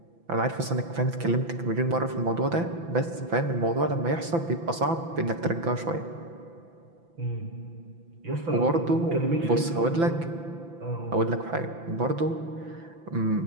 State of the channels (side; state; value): left; late; 6.0 ms